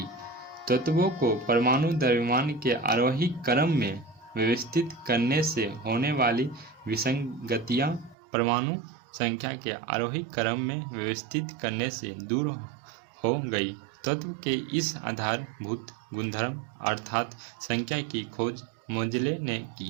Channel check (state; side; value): drops out; left; at 8.2 s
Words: तत्वों को परमाणु द्रव्यमान के आरोही क्रम में व्यवस्थित करने से होने वाली विसंगतियां परमाणु संख्या के आरोही क्रम में व्यवस्थित करने से दूर हो गई। तत्व के इस आधारभूत गुणधर्म अर्थात संख्या की खोज मोजले ने